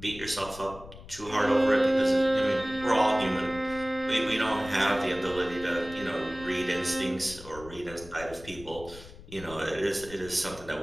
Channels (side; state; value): left; noise; rumble, 17 dB below the sound